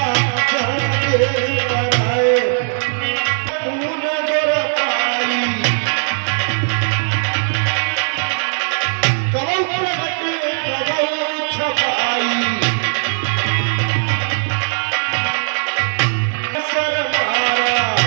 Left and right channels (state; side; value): silent; left; digital silence